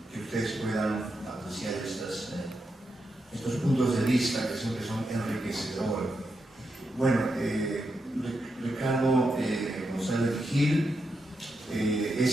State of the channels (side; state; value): both; normal; correlation 0.85